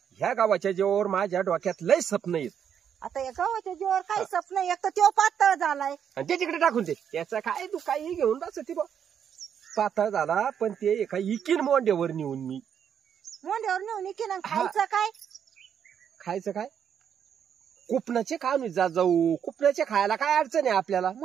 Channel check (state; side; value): quieter; left; 8.4 dB